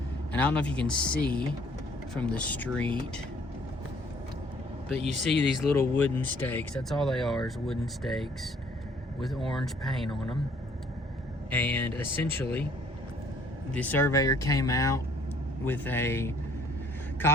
And I don't know if you can see from the street, but you see these little wooden stakes. That's all they are, is wooden stakes with orange paint on them. And essentially, the surveyor came out with a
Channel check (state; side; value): normal; both; correlation 0.60